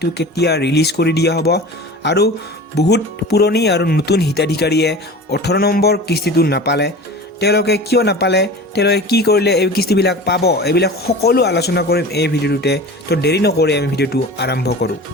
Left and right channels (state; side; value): normal; both; correlation 0.36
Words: কেতিয়া ৰিলিজ কৰি দিয়া হ'ব আৰু বহুত পুৰণি আৰু নতুন হিতাধিকাৰীয়ে 18 নম্বৰ কিস্তিটো নাপালে। তেওঁলোকে কিয় নাপালে, তেওঁলোকে কি কৰিলে এই কিস্তিবিলাক পাব, এইবিলাক সকলো আলোচনা কৰিম এই ভিডিঅ'টোতে। তো দেৰি নকৰি আমি ভিডিঅ'টো আৰম্ভ কৰোঁ।